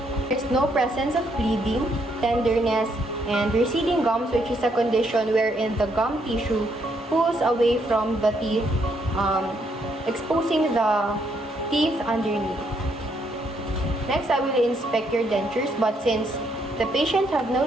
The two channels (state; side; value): normal; both; correlation 0.73